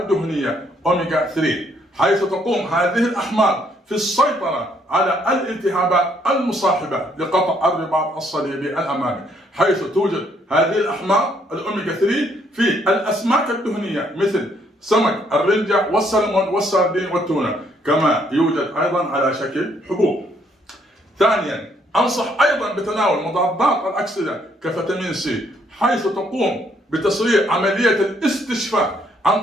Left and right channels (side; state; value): both; normal; correlation 0.69